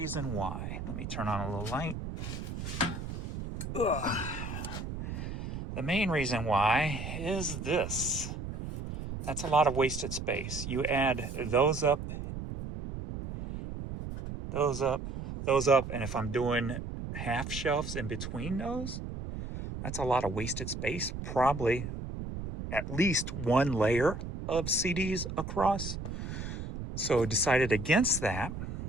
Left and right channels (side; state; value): right; noise; rumble, 7 dB below the sound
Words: why. Let me turn on a little light. Ugh. The main reason why is this. That's a lot of wasted space. You add those up, and if I'm doing half shelves in between those, that's a lot of wasted space. Probably at least one layer of CDs across. So I decided against that.